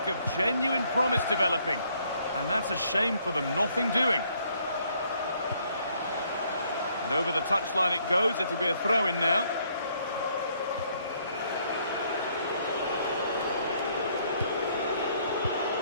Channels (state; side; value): inverted; both; correlation -0.67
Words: of genuine promise developing. And that's a shame for them, nothing doing. And over the touchline it goes, it'll be a throw-in now.